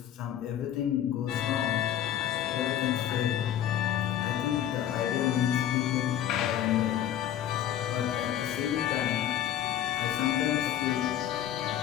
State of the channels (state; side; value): quieter; right; 10.9 dB